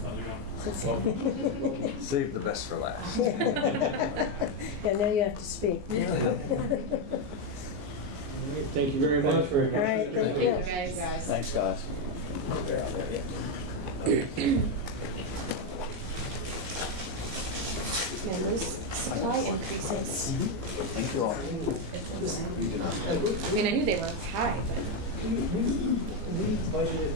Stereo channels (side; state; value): left; late; 15 ms